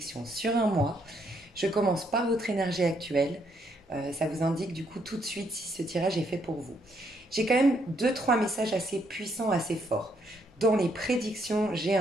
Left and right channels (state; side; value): normal; both; correlation 0.72